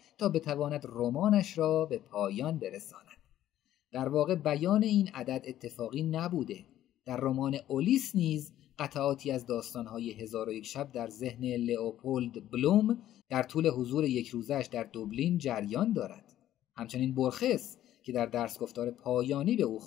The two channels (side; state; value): right; quieter; 12.6 dB